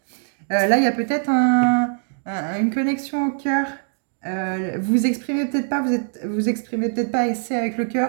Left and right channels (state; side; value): silent; left; 63 dB below the other